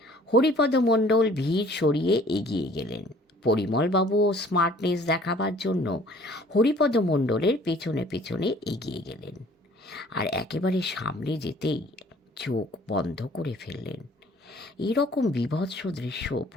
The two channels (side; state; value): both; normal; correlation 0.54